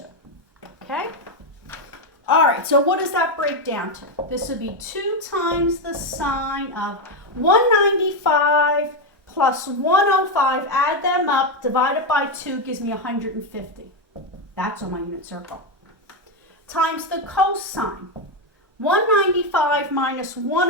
Okay? All right, so what does that break down to? This would be 2 times the sine of 195 plus 105, add them up, divide it by 2, gives me 150. That's on my unit circle. Times the cosine. 195 minus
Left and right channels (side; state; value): both; normal; correlation 0.07